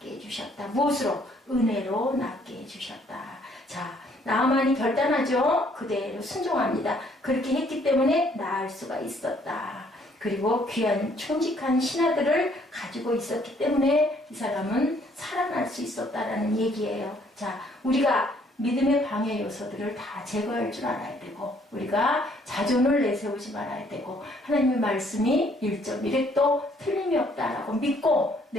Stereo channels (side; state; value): both; normal; correlation 0.64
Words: 해주셨다. 무엇으로? 은혜로 낫게 해주셨다. 자, 나만이 결단하죠. 그대로 순종합니다. 그렇게 했기 때문에 나을 수가 있었다. 그리고 귀한 충직한 신하들을 가지고 있었기 때문에 이 사람은 살아날 수 있었다라는 얘기예요. 자, 우리가 믿음의 방해 요소들을 다 제거할 줄 알아야 되고 우리가 자존을 내세우지 말아야 되고 하나님의 말씀이 1.1획도 틀림이 없다라고 믿고